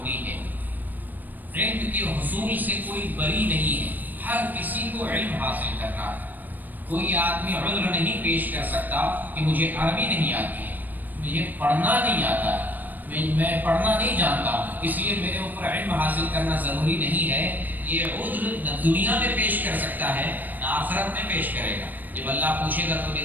ہے۔ علم کے حصول سے کوئی بری نہیں ہے، ہر کسی کو علم حاصل کرنا ہے۔ کوئی آدمی عذر نہیں پیش کر سکتا کہ مجھے عربی نہیں آتی ہے، مجھے پڑھنا نہیں آتا ہے، میں پڑھنا نہیں جانتا ہوں، اس لیے میرے اوپر علم حاصل کرنا ضروری نہیں ہے۔ یہ عذر نہ دنیا میں پیش کر سکتا ہے نہ آخرت میں پیش کرے گا۔ جب اللہ پوچھے گا تو نے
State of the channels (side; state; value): left; late; 0.087 ms